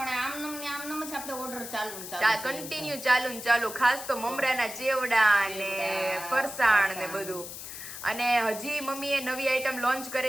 આમનમ જ આપણે ઓર્ડર કન્ટિન્યુ ચાલુ ખાસ તો મમરાના ચેવડા ને ફરસાણ ને બધું. અને હજી મમ્મીએ નવી આઈટમ લોન્ચ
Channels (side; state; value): left; noise; hiss, 10 dB below the sound